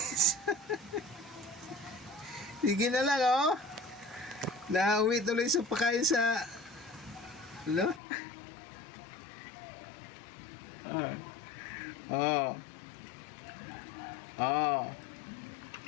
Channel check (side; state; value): right; drops out; at 8.0 s